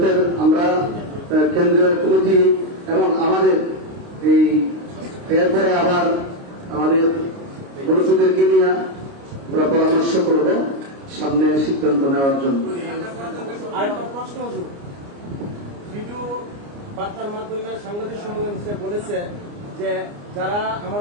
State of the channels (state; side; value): late; left; 29 ms